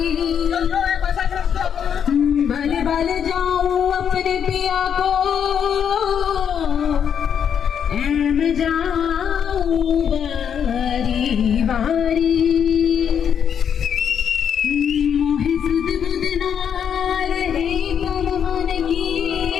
भले भले जाऊं अपने पिया को मैं जाऊं बारी बारी मोहे सुध बुध ना रहे तन मन की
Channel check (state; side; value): quieter; right; 8.1 dB